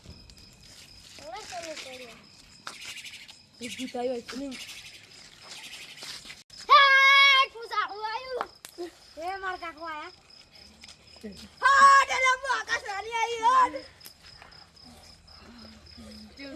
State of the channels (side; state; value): both; identical; correlation 1.00